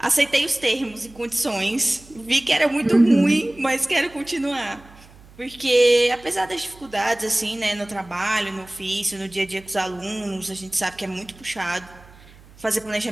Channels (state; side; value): noise; right; hum, 24 dB below the sound